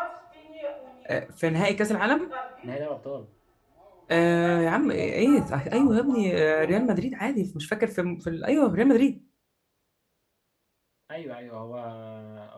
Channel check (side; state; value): both; identical; correlation 1.00